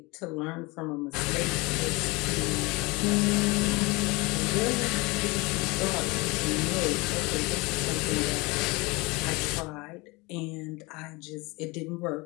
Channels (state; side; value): quieter; right; 25.0 dB